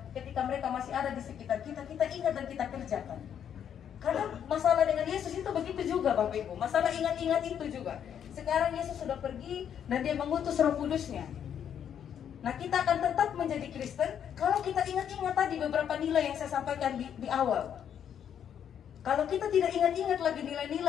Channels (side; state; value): right; quieter; 8.9 dB